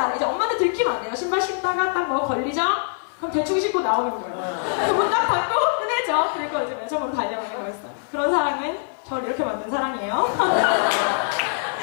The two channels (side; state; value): right; silent; digital silence